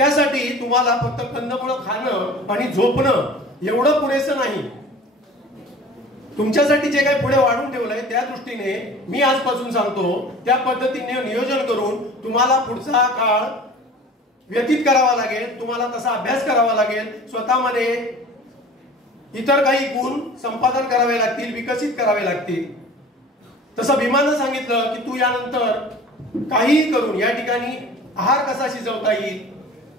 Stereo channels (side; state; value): both; normal; correlation 0.43